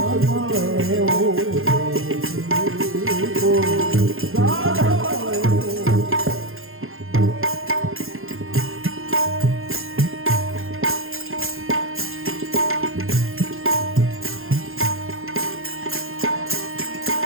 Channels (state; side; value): late; left; 0.60 ms